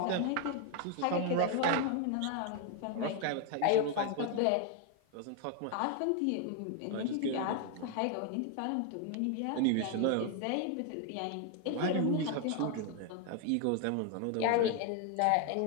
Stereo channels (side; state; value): both; different; correlation 0.01